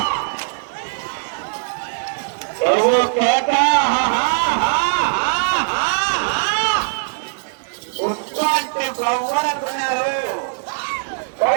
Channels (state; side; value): silent; left; digital silence